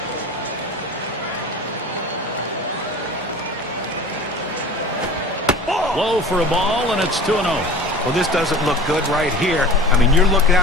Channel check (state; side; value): normal; both; correlation 0.38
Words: Low for a ball, and it's 2-0. Well, this doesn't look good right here. I mean, you're looking